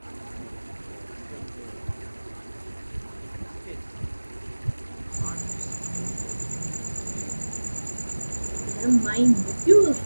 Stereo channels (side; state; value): both; inverted; correlation -1.00